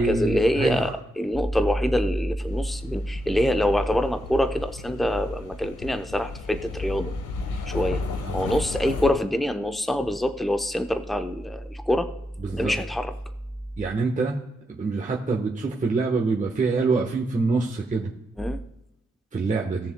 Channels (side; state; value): both; normal; correlation 0.84